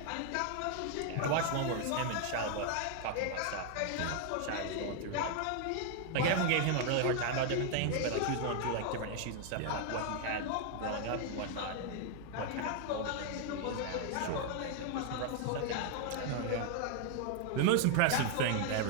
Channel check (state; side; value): different; both; correlation 0.00